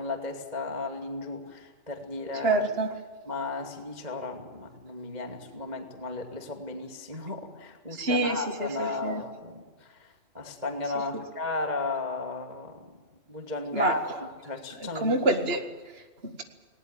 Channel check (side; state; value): left; late; 2.9 ms